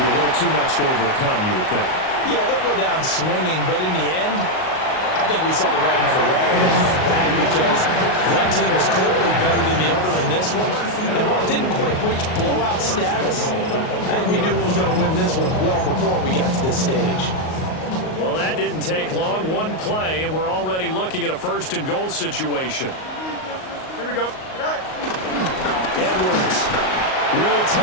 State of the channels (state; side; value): late; right; 38 ms